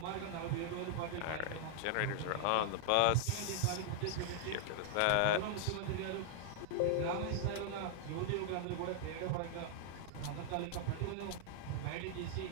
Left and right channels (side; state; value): both; different; correlation -0.01